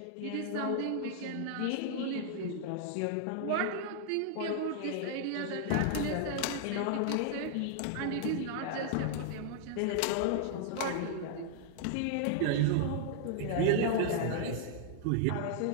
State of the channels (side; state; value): both; different; correlation -0.01